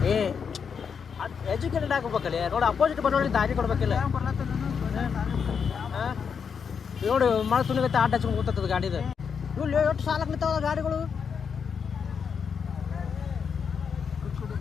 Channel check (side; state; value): right; quieter; 6.5 dB